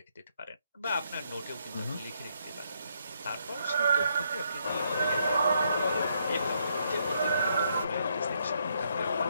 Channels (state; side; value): inverted; both; correlation -0.74